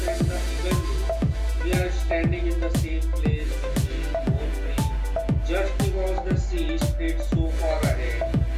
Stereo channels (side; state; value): both; identical; correlation 1.00